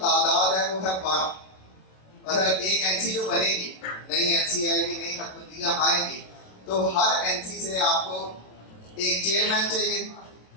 تعداد ہے وہ ہے 12. مطلب ایک این سی جو بنے گی نئی این سی آئے گی نئی حکومتیاں آئیں گی تو ہر این سی سے آپ کو ایک چیئرمین چاہیے,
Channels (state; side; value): late; right; 26 ms